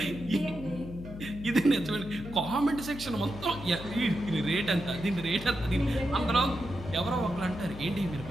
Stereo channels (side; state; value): left; noise; hum, 12 dB below the sound